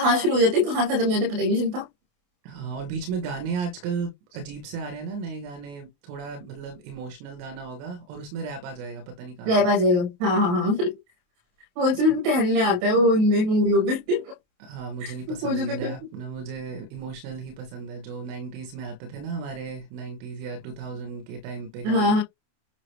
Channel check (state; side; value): late; left; 28 ms